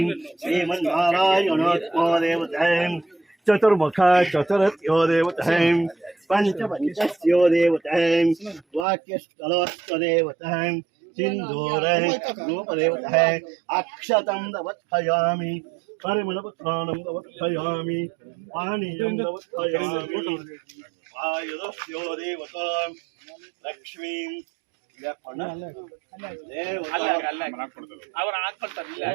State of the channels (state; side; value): drops out; left; at 8.8 s